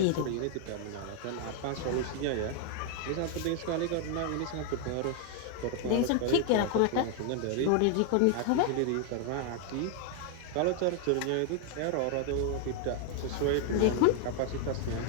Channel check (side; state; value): both; different; correlation 0.00